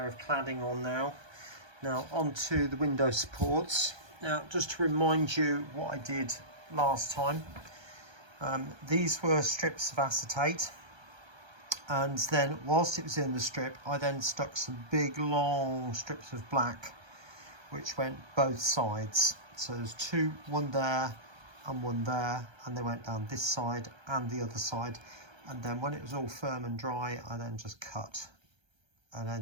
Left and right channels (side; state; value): left; late; 1.3 ms